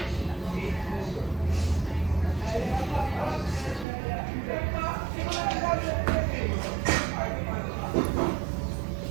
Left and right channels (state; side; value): drops out; left; at 3.9 s